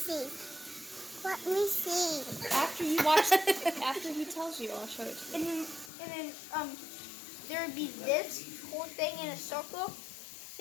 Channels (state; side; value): drops out; right; at 5.9 s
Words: Let me see. After you watch, after he tells you, I'll show it to you. and then, there would be this whole thing in a circle.